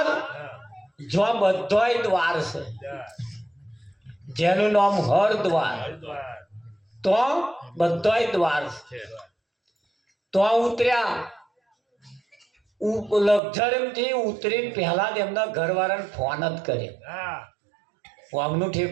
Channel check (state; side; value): drops out; left; at 13.4 s